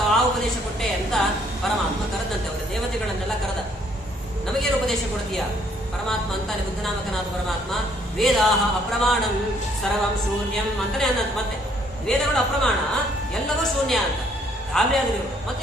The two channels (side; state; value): both; normal; correlation 0.65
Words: ಆ ಉಪದೇಶ ಕೊಟ್ಟೆ ಅಂತ ಪರಮಾತ್ಮ ಕರೆದಂತೆ. ಅವರ ದೇವತೆಗಳನ್ನೆಲ್ಲ ಕರೆದ. ನಮಗೇನು ಉಪದೇಶ ಕೊಡ್ತೀಯ ಪರಮಾತ್ಮ ಅಂತಾನೆ. ಬುದ್ಧನಾಮಕನಾದ ಪರಮಾತ್ಮ ವೇದಾಹ ಅಪ್ರಮಾಣಂ ಸರ್ವಂ ಶೂನ್ಯಂ ಅಂತಾನೆ ಅನ್ನಂತ. ಮತ್ತೆ ವೇದಗಳು ಅಪ್ರಮಾಣ, ಎಲ್ಲವೂ ಶೂನ್ಯ ಅಂತ ಗಾಬರಿಯಾದ್ರು. ಮತ್ತೆ